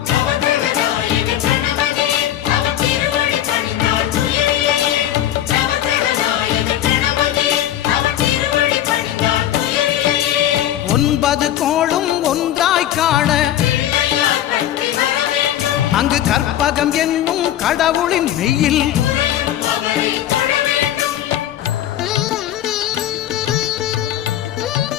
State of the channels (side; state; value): right; quieter; 12.0 dB